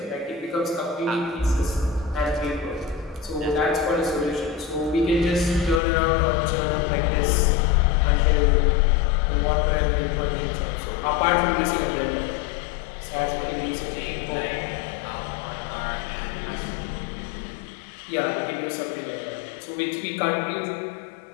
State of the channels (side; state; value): right; drops out; at 5.8 s